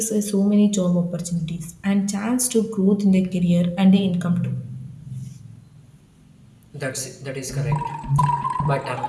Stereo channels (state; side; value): identical; both; correlation 1.00